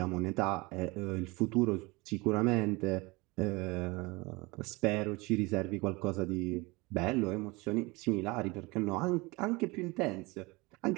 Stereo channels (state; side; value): quieter; left; 24.4 dB